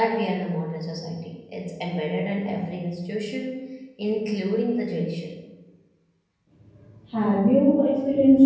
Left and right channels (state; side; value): identical; both; correlation 1.00